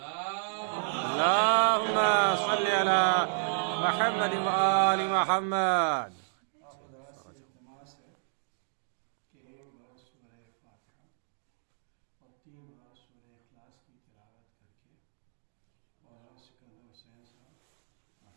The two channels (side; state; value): left; silent; digital silence